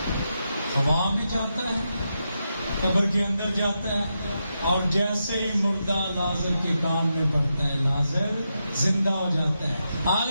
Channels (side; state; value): both; inverted; correlation -0.86